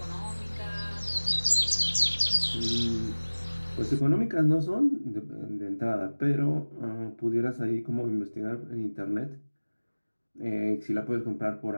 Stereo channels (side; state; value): both; inverted; correlation -1.00